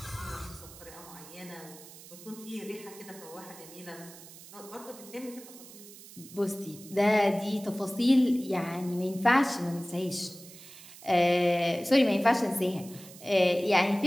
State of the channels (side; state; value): right; noise; hiss, 18 dB below the sound